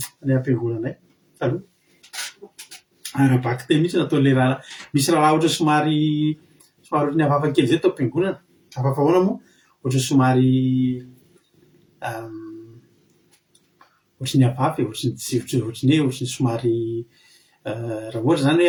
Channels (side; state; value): both; identical; correlation 1.00